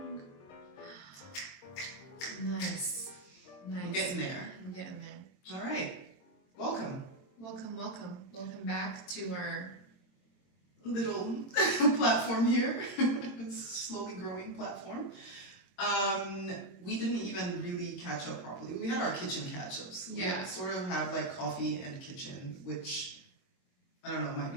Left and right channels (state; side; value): late; right; 22 ms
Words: Nice. We're getting there. All right. Welcome. Welcome back to our little platform here. Slowly growing platform. We didn't even really catch up properly. We had our kitchen catch-ups. Yeah. We sort of have like coffee and kitchen, which I don't know, might